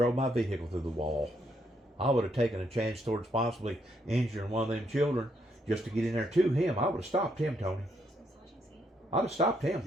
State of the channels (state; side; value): normal; both; correlation 0.75